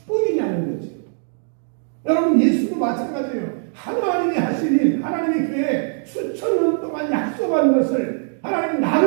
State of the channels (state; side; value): silent; left; 58 dB below the other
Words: 거죠. 여러분 예수도 마찬가지예요. 하나님이 하신 일, 하나님의 교회 수천 년 동안 약속한 것을 하나님